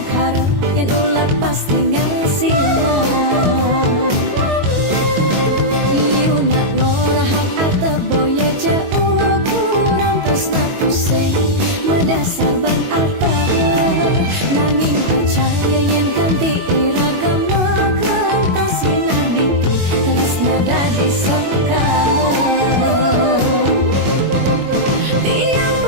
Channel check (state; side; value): late; left; 22 ms